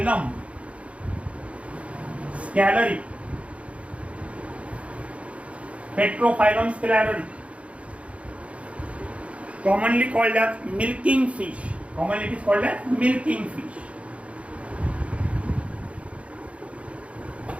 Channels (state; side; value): late; left; 0.063 ms